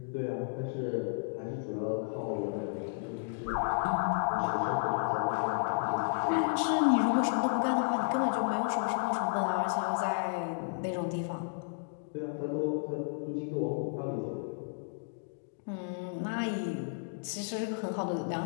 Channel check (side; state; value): right; silent; digital silence